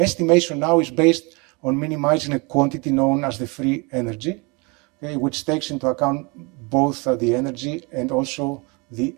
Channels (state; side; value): quieter; left; 28.7 dB